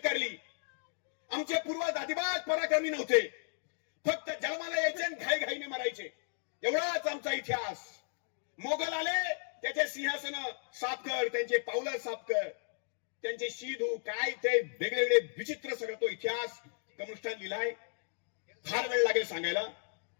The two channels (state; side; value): silent; right; digital silence